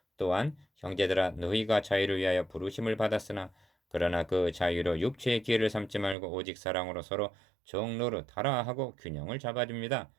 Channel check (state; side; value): drops out; left; at 6.2 s